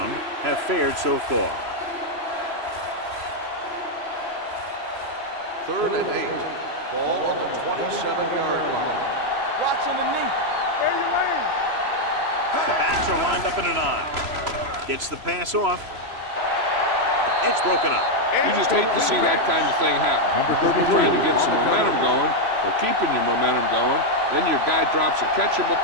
have fared so far. 3rd and 8. Ball on the 27-yard line. Watch underneath. Stay your lane. The backs are lined up in an I. Gets the pass off. It's broken up. You just hate to see that kind of thing happen. You're trying to get some momentum going or keeping your momentum going, then your guy drops a catchable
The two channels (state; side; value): late; left; 3.0 ms